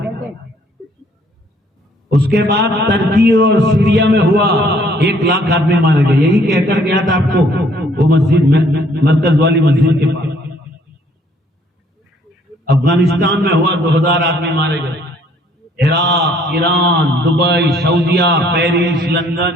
उसके बाद टर्की और सीरिया में हुआ, 1 लाख आदमी मारे गए, यही कहकर गया था आपको, वो मस्जिद में, मरकज वाली मस्जिद के पास। अफगानिस्तान में हुआ, 2000 आदमी मारे गए। Iraq, Iran, Dubai, Saudia, Paris, London,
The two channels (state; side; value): normal; both; correlation 0.62